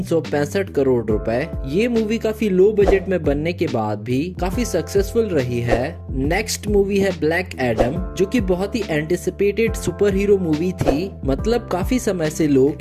करोड़ रुपए। ये मूवी काफी लो बजट में बनने के बाद भी काफी सक्सेसफुल रही है। नेक्स्ट मूवी है ब्लैक एडम, जो कि बहुत ही एंटिसिपेटेड सुपर हीरो मूवी थी। मतलब काफी समय से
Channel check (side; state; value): both; identical; correlation 1.00